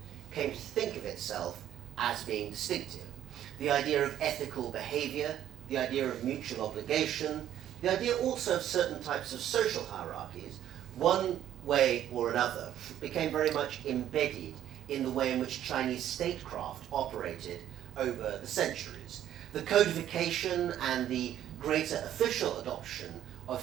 came to think of itself as being distinctive. The idea of ethical behavior, the idea of mutual obligation, the idea also of certain types of social hierarchies, one way or another, became very much embedded in the way in which Chinese statecraft operated over the centuries. the codification and the greater official adoption of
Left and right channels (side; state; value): left; quieter; 11.3 dB